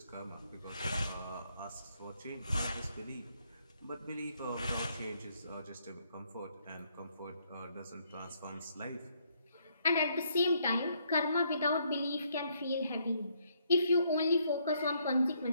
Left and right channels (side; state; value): both; inverted; correlation -0.71